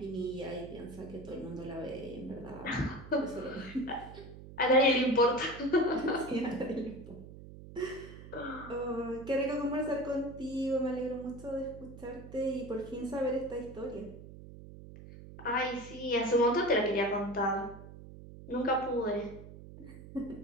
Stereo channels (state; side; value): noise; right; hum, 15 dB below the sound